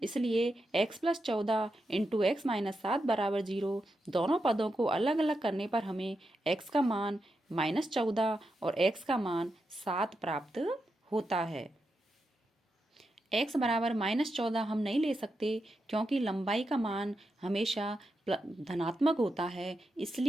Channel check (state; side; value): normal; both; correlation 0.87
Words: इसलिए x + 14 इंटू x - 7 बराबर 0। दोनों पदों को अलग अलग करने पर हमें x का मान -14 और x का मान 7 प्राप्त होता है। x बराबर -14 हम नहीं ले सकते क्योंकि लंबाई का मान हमेशा धनात्मक होता है,